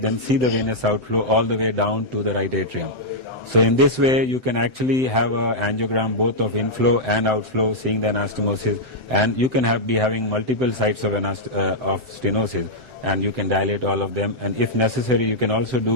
see the venous outflow all the way down to the right atrium. So in this way, you can actually have an angiogram both of inflow and outflow, seeing the anastomosis, and you can be having multiple sites of stenosis, and you can dilate all of them. And if necessary, you can also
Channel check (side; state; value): right; late; 1.4 ms